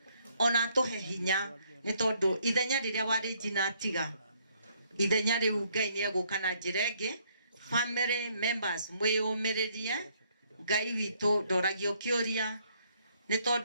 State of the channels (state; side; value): inverted; both; correlation -0.68